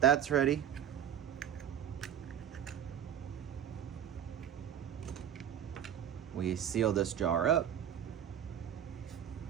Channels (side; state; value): left; quieter; 9.7 dB